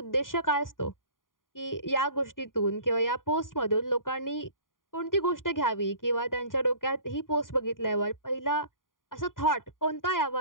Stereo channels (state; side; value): late; right; 0.90 ms